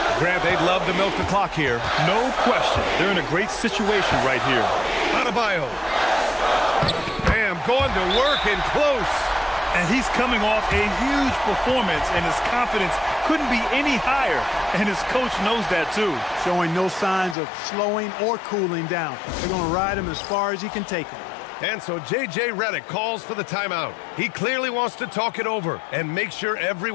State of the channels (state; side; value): drops out; right; at 17.4 s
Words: Grant, they'd love to milk the clock here. No question. They're in a great situation right here. Adebayo. Bam, going to work and close. And he's coming off a huge performance, and his confidence couldn't be any higher. And his coach knows that, too. Showing no signs of slowing or cooling down. They're going to ride him as far as he can take him. And so J.J. Redick calls for the timeout. He clearly wants to talk it over and make sure